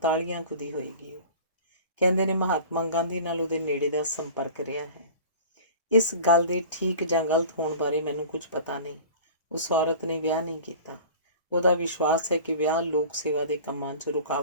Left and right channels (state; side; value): inverted; both; correlation -0.40